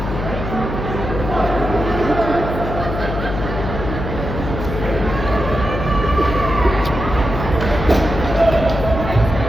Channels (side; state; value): left; noise; hum, 5 dB below the sound